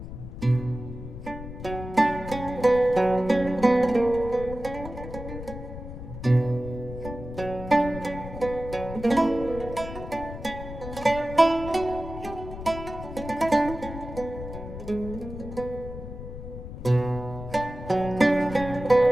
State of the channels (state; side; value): noise; left; rumble, 10 dB below the sound